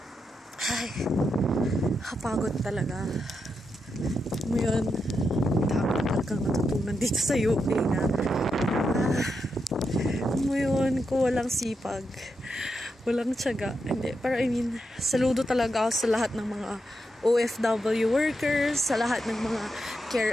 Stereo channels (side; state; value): both; normal; correlation 0.85